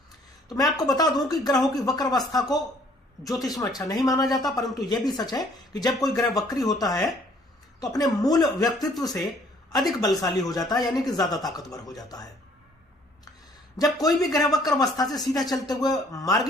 तो मैं आपको बता दूं कि ग्रहों की वक्र अवस्था को ज्योतिष में अच्छा नहीं माना जाता, परंतु यह भी सच है कि जब कोई ग्रह वक्री होता है तो अपने मूल व्यक्तित्व से अधिक बलशाली हो जाता है, यानी कि ज्यादा ताकतवर हो जाता है। जब कोई भी ग्रह वक्र अवस्था से सीधा चलते हुए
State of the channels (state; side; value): normal; both; correlation 0.60